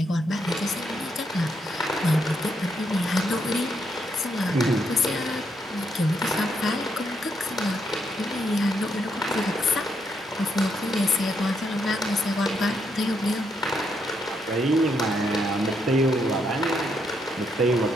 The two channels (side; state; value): both; normal; correlation 0.77